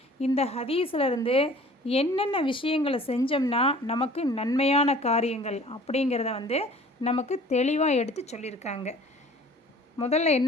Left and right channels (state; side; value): normal; both; correlation 0.49